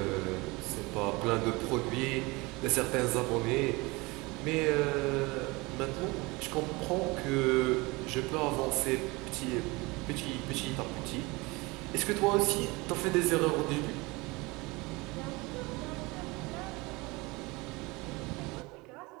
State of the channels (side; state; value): left; quieter; 24.2 dB